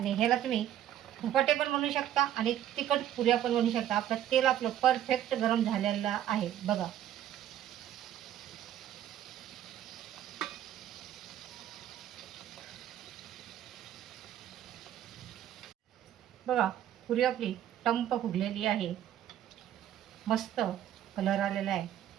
ह्याला तुम्ही धपाटे पण बनवू शकता आणि तिखट पुऱ्या पण बनवू शकता. तेल आपलं परफेक्ट गरम झालेलं आहे. बघा, बघा, पुरी आपली टंप फुगलेली आहे. मस्त कलर आलेला आहे.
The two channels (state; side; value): quieter; left; 11.5 dB